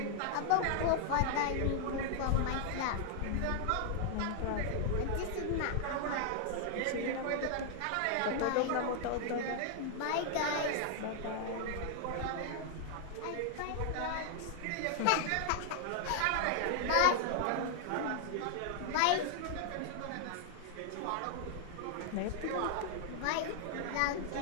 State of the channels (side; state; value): both; different; correlation 0.00